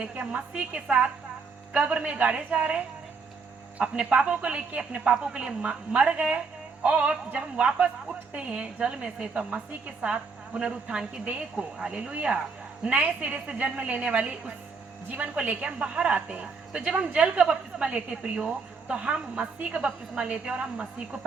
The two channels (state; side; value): quieter; left; 4.9 dB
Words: कि हम मसीह के साथ कब्र में गाड़े जा रहे, अपने पापों को लेके, अपने पापों के लिए मर गए, और जब हम वापस उठते हैं जल में से तो मसीह के साथ पुनरुत्थान की देह को, हालेलुया, नए सिरे से जन्म लेने वाली उस जीवन को लेके हम बाहर आते हैं। तो जब हम जल का बपतिस्मा लेते हैं प्रियो, तो हम मसीह का बपतिस्मा लेते हैं और हम मसीह को